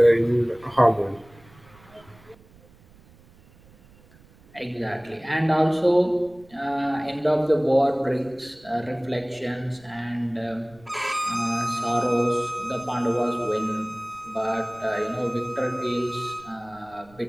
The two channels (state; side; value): noise; right; rumble, 26 dB below the sound